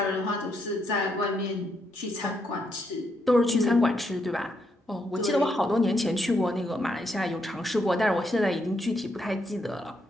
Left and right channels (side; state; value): both; normal; correlation 0.78